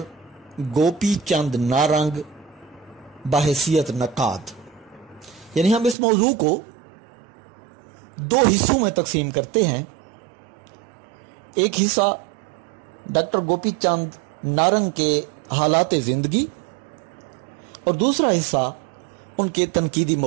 گوپی چند نارنگ بحیثیت نقاد. یعنی ہم اس موضوع کو دو حصوں میں تقسیم کرتے ہیں. ایک حصہ ڈاکٹر گوپی چند نارنگ کے حالات زندگی اور دوسرا حصہ ان کے تنقیدی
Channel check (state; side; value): drops out; left; at 6.0 s